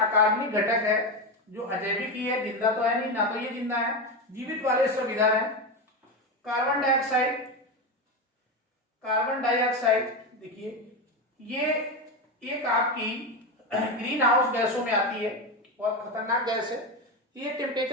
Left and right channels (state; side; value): normal; both; correlation 0.15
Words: घटक है जो अजैविक ही है, जिंदा तो है नहीं, ना तो ये जिंदा है, जीवित वाले सब इधर है। कार्बन डाइऑक्साइड देखिए ये एक आपकी ग्रीन हाउस गैसों में आती है, बहुत खतरनाक गैस है, ये